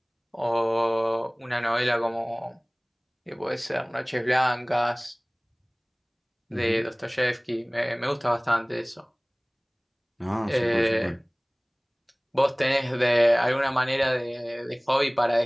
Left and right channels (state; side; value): identical; both; correlation 1.00